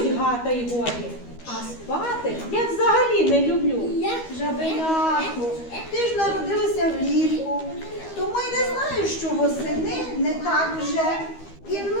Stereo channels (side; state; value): right; late; 12 ms